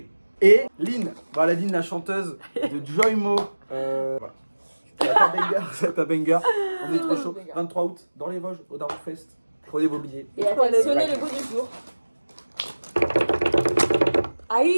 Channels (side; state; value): both; inverted; correlation -1.00